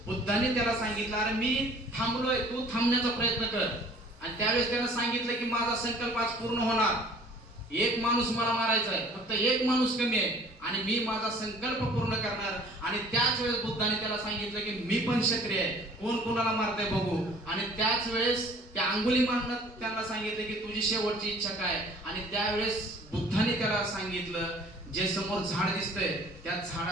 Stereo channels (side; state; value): both; normal; correlation 0.51